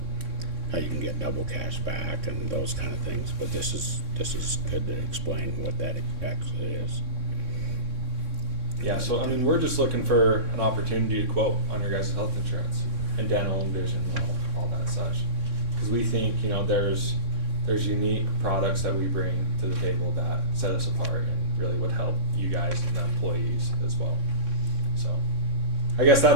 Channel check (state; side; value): late; left; 3.6 ms